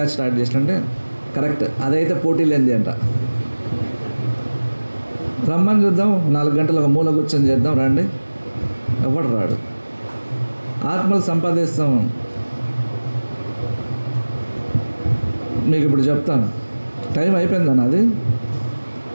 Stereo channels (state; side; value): inverted; both; correlation -1.00